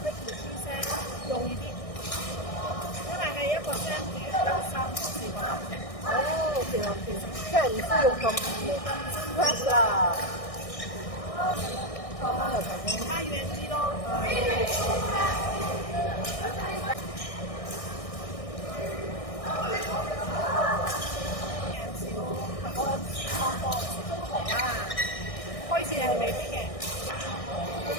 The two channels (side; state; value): right; late; 1.6 ms